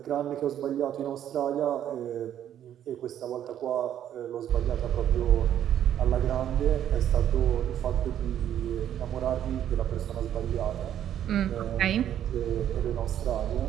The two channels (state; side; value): quieter; left; 10.5 dB